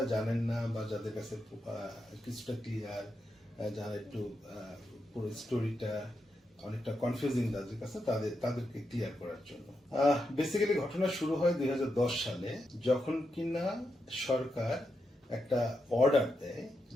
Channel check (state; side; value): normal; both; correlation 0.85